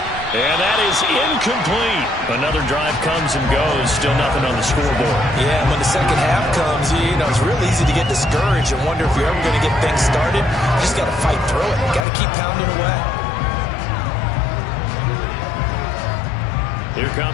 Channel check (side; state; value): right; drops out; at 12.1 s